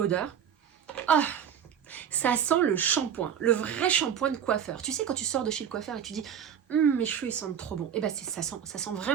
Ah, ça sent le shampoing, le vrai shampoing de coiffeur. Tu sais, quand tu sors de chez le coiffeur et tu dis mes cheveux ils sentent trop bon. Et ben ça sent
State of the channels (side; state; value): left; quieter; 8.6 dB